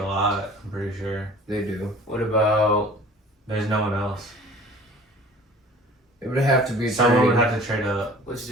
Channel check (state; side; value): normal; both; correlation 0.47